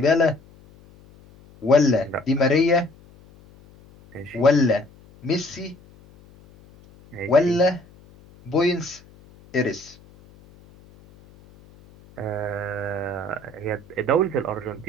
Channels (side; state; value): left; noise; hum, 25 dB below the sound